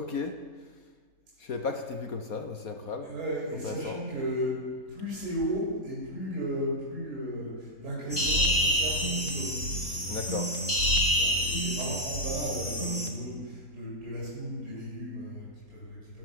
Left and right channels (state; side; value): late; right; 3.8 ms